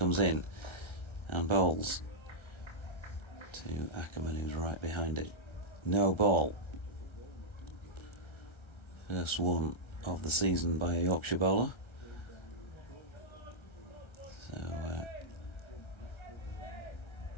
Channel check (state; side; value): late; right; 1.3 ms